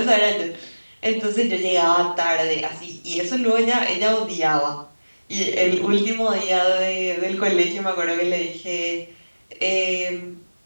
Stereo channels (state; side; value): inverted; both; correlation -1.00